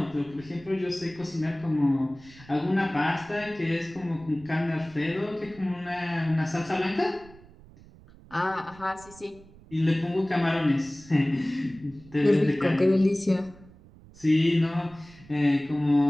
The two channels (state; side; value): noise; right; rumble, 22 dB below the sound